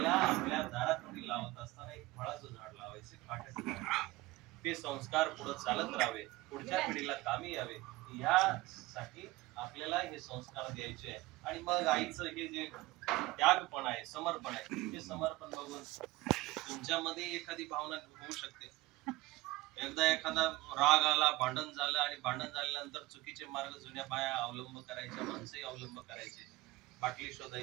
आपल्या दारात लावत असताना एक फळाचं झाड लावायचे, काट्याचं झाड. ते संस्कार पुढे चालत राहावे, पुढच्या पिढीला कामी यावे, यासाठी आपल्याला हे संस्कार द्यायचे. आणि मग आईचं हे जे त्यागपण आहे, समर्पण आहे, ते समर्पण बघून तुमच्यामध्ये एखादी भावना होऊ शकते. एकदा एखादा राग आला, भांडण झालं आणि भांडण झाल्यानंतर चुकीचे मार्ग जुन्या बाया अवलंब करायच्या, माणसंही अवलंब करायचे. बाटली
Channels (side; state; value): left; quieter; 19.9 dB